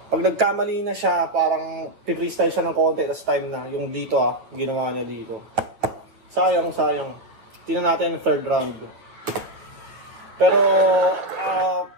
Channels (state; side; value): late; left; 9.0 ms